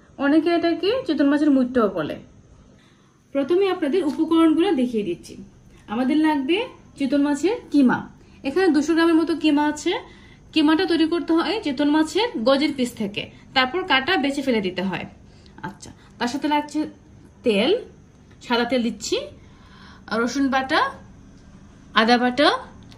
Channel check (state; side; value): identical; both; correlation 1.00